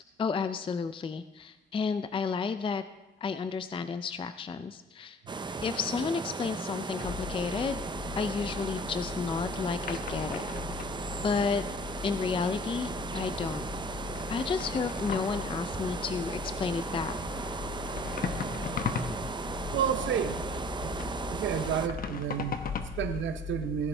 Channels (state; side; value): normal; both; correlation 0.50